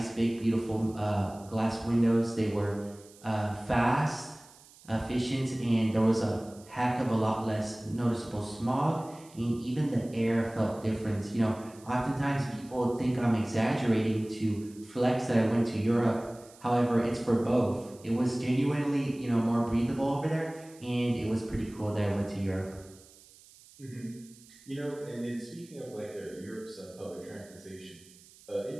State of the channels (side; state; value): right; noise; hiss, 24 dB below the sound